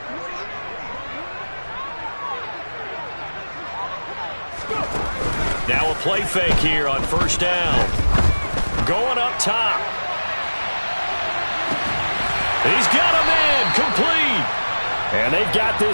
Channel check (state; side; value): inverted; both; correlation -1.00